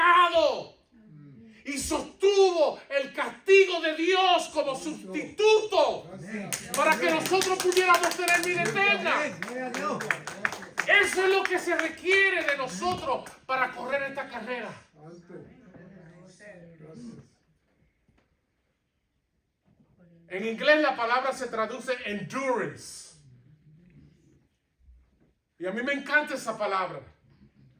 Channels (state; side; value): identical; both; correlation 1.00